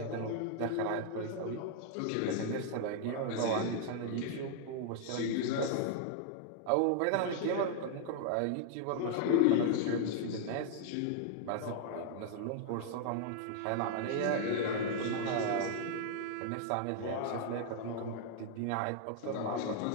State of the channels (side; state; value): both; different; correlation -0.01